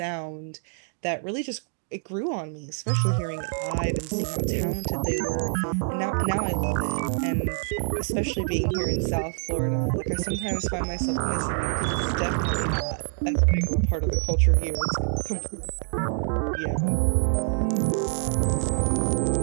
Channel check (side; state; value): left; silent; digital silence